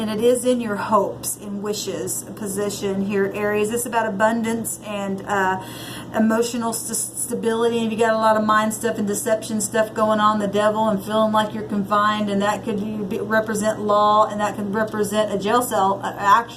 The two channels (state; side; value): identical; both; correlation 1.00